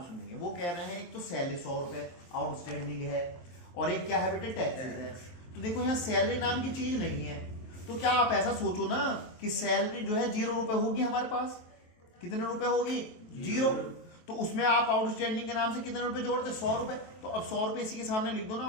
सुनेंगे। वो कह रहे हैं एक तो सैलरी 100 रुपए आउटस्टैंडिंग है, और एक क्या है बेटे? टैक्सेस है। तो देखो यहाँ सैलरी नाम की चीज नहीं है, तो क्या आप ऐसा सोचो ना कि सैलरी जो है 0 रुपए होगी हमारे पास। कितने रुपए होगी? 0। तो उसमें आप आउटस्टैंडिंग के नाम से कितने रुपए जोड़ते? 100 रुपए। तो अब 100 रुपए इसी के सामने लिख दो ना,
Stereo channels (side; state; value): right; late; 23 ms